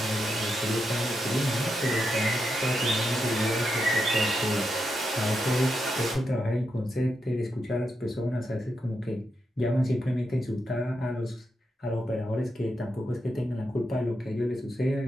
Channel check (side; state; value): both; normal; correlation 0.84